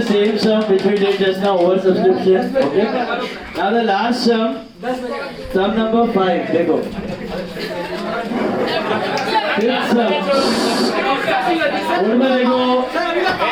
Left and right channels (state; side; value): identical; both; correlation 1.00